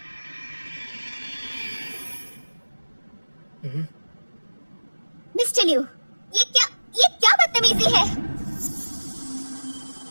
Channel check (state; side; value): inverted; both; correlation -1.00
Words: मिस्टर लिू, ये क्या बदतमीजी है?